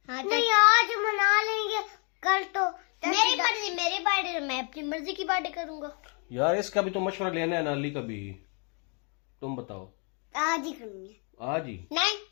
हाँ नहीं, आज मना लेंगे। कल तो मेरी मर्जी, मेरी बर्थडे, मैं अपनी मर्जी की बर्थडे करूंगा। यार इसका भी तो मशवरा लेना है ना अली का भी। तुम बताओ। आज ही करूंगी। आज ही? नहीं,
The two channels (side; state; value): right; quieter; 37.4 dB